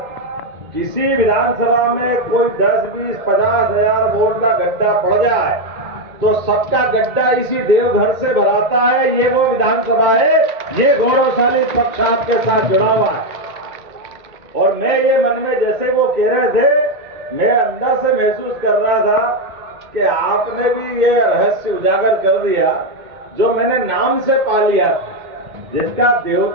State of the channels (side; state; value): left; late; 2.0 ms